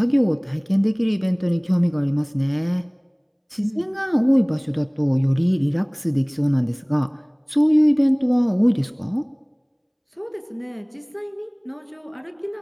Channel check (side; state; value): both; identical; correlation 1.00